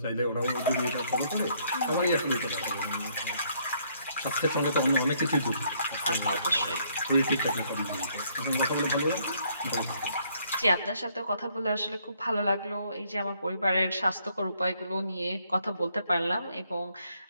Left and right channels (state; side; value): inverted; both; correlation -0.68